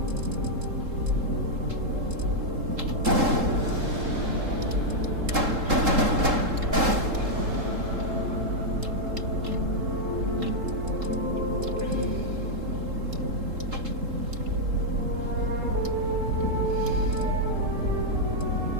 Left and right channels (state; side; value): late; left; 3.7 ms